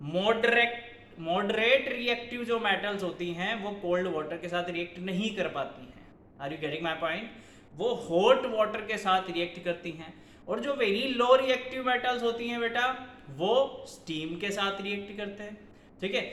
मॉडरेट रिएक्टिव जो मेटल्स होती हैं वो कोल्ड वाटर के साथ रिएक्ट नहीं कर पाती हैं। Are you getting my point? वो हॉट वाटर के साथ रिएक्ट करती हैं। और जो वेरी लो रिएक्टिव मेटल्स होती हैं बेटा, वो स्टीम के साथ रिएक्ट करते हैं, ठीक है।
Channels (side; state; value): both; identical; correlation 1.00